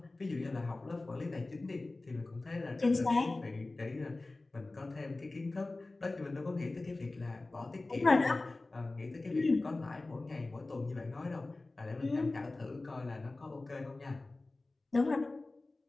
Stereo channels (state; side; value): quieter; right; 3.1 dB